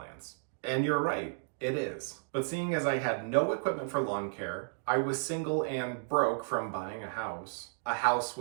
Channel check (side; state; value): left; silent; digital silence